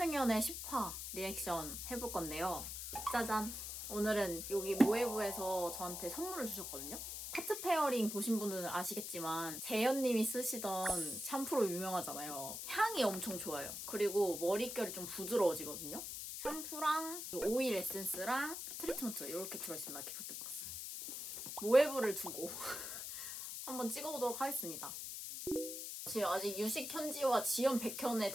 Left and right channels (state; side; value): noise; left; hiss, 6 dB below the sound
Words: 10화 리액션 해볼 건데요. 짜잔! 오늘은 여기 모에브에서 저한테 선물을 주셨거든요. 하트 페어링 보신 분들은 아시겠지만 재현님이 쓰시던 샴푸로 유명하잖아요. 향이 엄청 좋아요. 그리고 머릿결이 좀 부드러워지거든요. 샴푸랑 오일 에센스랑 트리트먼트 이렇게 들어있습니다. 기프트박스. 모에브를 두고 한번 찍어보도록 하겠습니다. 지금 아직 유식 현지와 지연 백현의